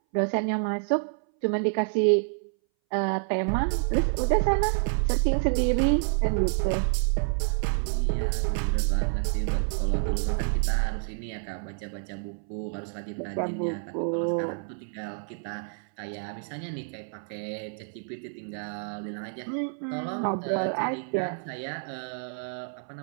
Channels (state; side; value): silent; left; 59 dB below the other